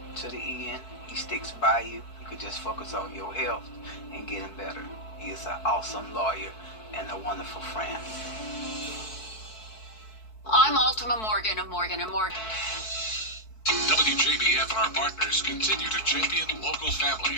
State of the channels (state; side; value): late; right; 4.6 ms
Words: to the end. He sticks by you. You could just focus on your health and getting better. He is an awesome lawyer and a wonderful friend. I'm Ultima Morgan of Morgan & Morgan. WJBF and our partners continue to champion local